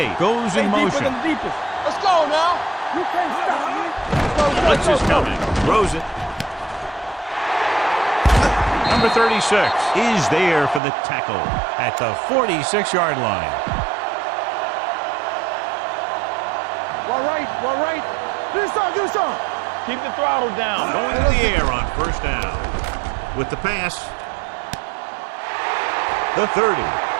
goes in motion. Let's go now. You can't stop me. Blitz is coming. Throws it. Number 36 is there for the tackle at the 46-yard line. All right. Do some. Keep the throttle down. Going to the air on first down. With the pass. The 30.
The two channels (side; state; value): left; drops out; at 10.8 s